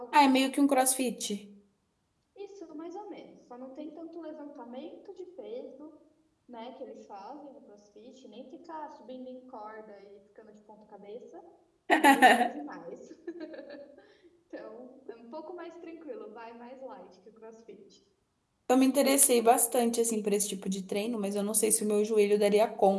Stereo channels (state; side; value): identical; both; correlation 1.00